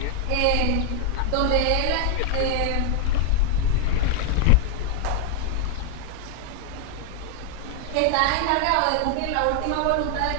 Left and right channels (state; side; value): different; both; correlation 0.00